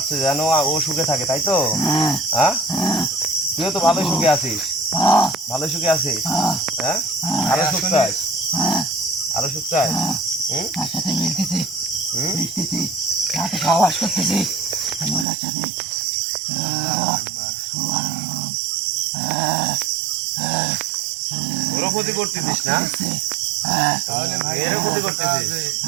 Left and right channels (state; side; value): drops out; left; at 15.2 s